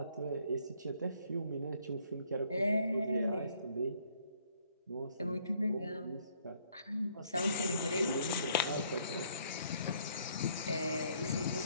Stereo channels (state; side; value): inverted; both; correlation -0.65